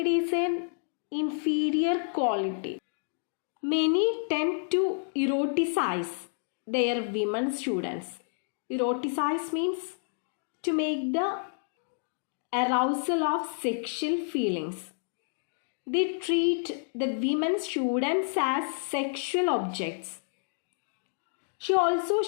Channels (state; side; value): silent; right; digital silence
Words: is an inferior quality. Many tend to eroticize their women students. Eroticize means to make the arousal of sexual feelings. They treat the women students as sexual objects. She also